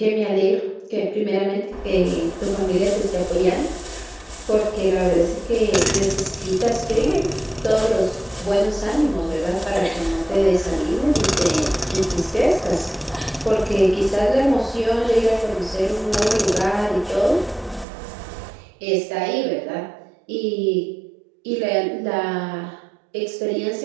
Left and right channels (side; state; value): left; drops out; at 17.9 s